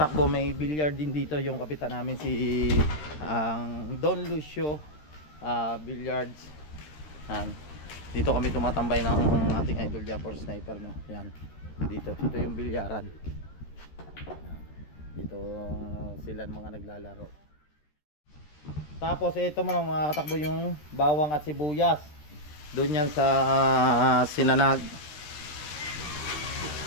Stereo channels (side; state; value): right; late; 13 ms